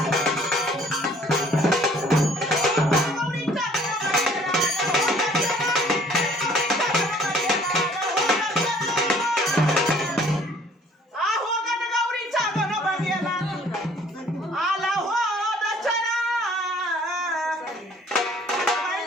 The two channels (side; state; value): both; normal; correlation 0.56